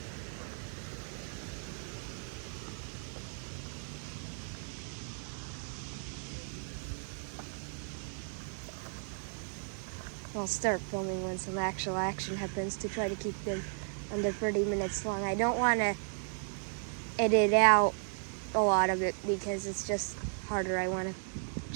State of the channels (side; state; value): left; silent; 54 dB below the other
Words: I'll start filming when some actual action happens to try to keep them under 30 minutes long. I don't want to edit out a lot of it because it's just harder. I want to